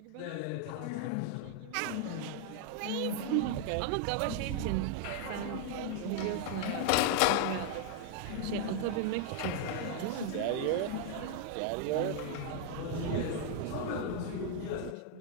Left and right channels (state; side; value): different; both; correlation 0.00